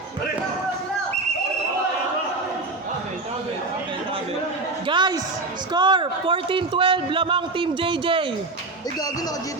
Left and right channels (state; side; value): quieter; left; 3.3 dB